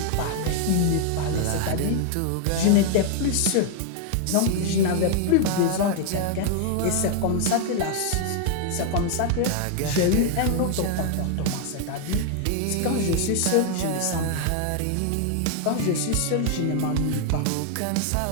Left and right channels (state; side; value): different; both; correlation 0.00